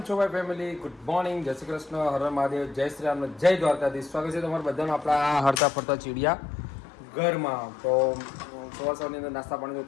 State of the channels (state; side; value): drops out; right; at 5.6 s